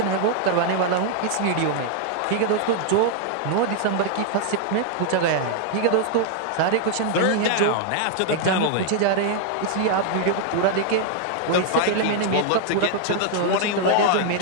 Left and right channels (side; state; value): both; different; correlation 0.00